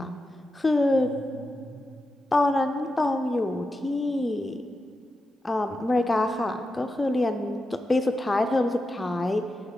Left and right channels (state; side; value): normal; both; correlation 0.89